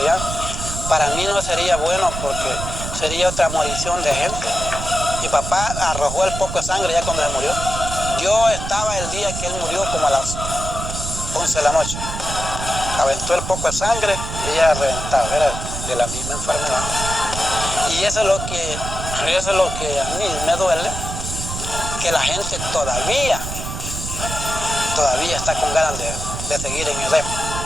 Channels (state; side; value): noise; right; rumble, 6 dB below the sound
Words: ¿ya? Para mí no sería bueno porque sería otra morición de gente. Mi papá arrojó el poco de sangre ya cuando se murió. Yo estaba el día que él murió como a las 11 de la noche. Aventó el poco de sangre y ella reventaba, era de la misma enfermedad. Y eso es lo que a mí me duele, que la gente todavía está con ganas de seguir en el rep.